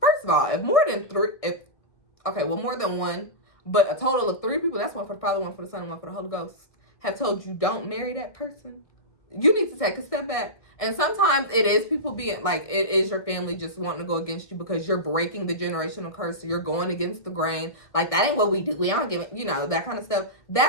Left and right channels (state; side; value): late; right; 1.6 ms